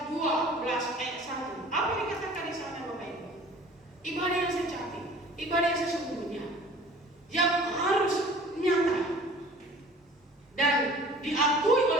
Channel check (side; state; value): both; normal; correlation 0.47